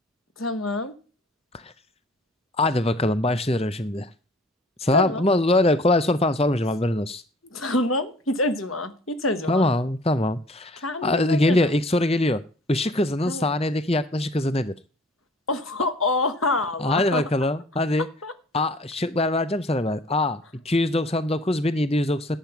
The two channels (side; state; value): both; normal; correlation 0.52